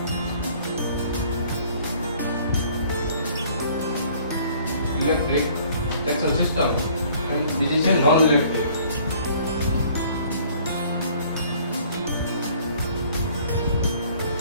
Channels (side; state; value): both; inverted; correlation -0.56